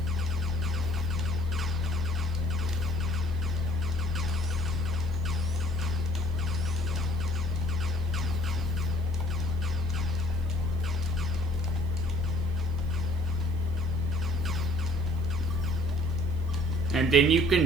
And then you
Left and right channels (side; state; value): left; noise; hiss, 29 dB below the sound